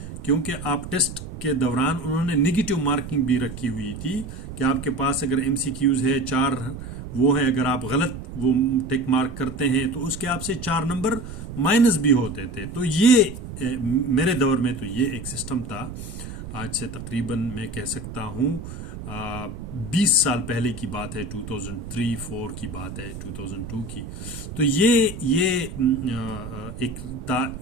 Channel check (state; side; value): noise; right; rumble, 10 dB below the sound